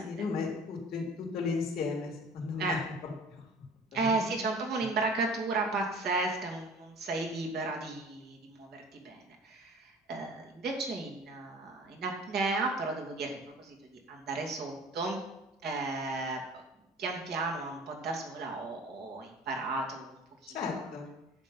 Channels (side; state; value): both; normal; correlation 0.44